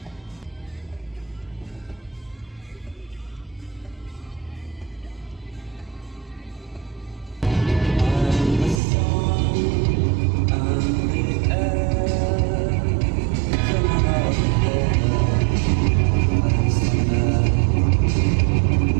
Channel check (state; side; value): drops out; left; at 8.8 s